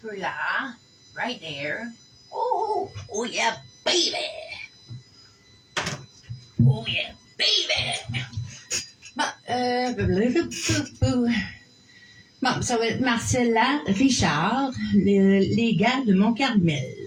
peu là, right there. Oh, oh yeah, baby! Oh yeah, baby! Bon, ça va être Marcella, Richard, les gars de Mont-Carmel.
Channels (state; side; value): identical; both; correlation 1.00